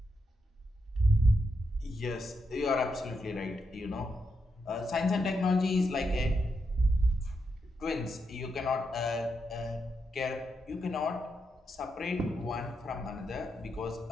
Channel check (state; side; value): normal; both; correlation 0.83